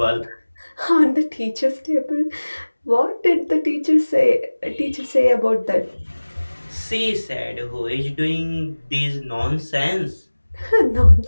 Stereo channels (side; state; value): both; inverted; correlation -1.00